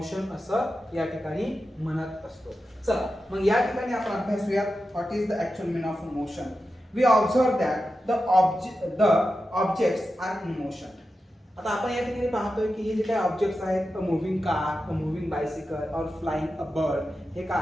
असं या ठिकाणी म्हणत असतो. चला मग या ठिकाणी आपण अभ्यासूया what is the actual meaning of motion. We observe that the objects are in motion. आता आपण या ठिकाणी पाहतोय की हे जे काही ऑब्जेक्ट्स आहेत, अ मूव्हिंग कार, अ मूव्हिंग बायसिकल और फ्लाइंग अ बर्ड, हे काय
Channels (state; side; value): normal; both; correlation 0.91